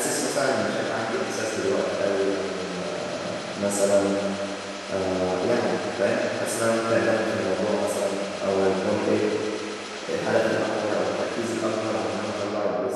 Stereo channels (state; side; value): identical; both; correlation 1.00